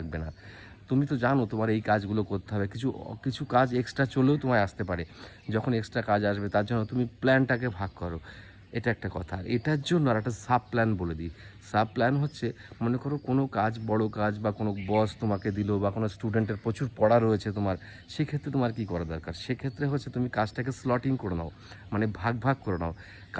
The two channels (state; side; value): identical; both; correlation 1.00